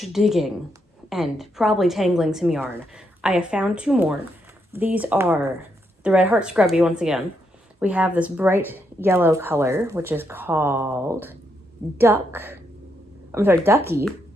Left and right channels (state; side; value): normal; both; correlation 0.79